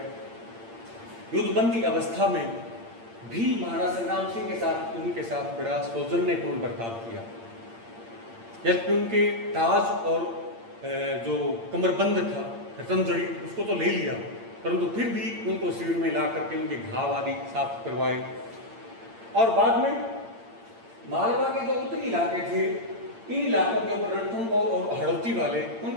युद्धबंदी अवस्था में भी महाराणा संग्राम सिंह के साथ, उनके साथ बड़ा सौजन्यपूर्ण बर्ताव किया। जबकि उनके ताज और जो कमरबंद था, रतनजड़ी, उसको तो ले लिया, परंतु फिर भी उनको शिविर में ला करके उनके घाव आदि साफ करवाए। और बाद में मालवा के जो उत्तरी इलाके थे, इन इलाकों के ऊपर रणथंभौर और हड़ौती वाले,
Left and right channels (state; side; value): late; left; 8.8 ms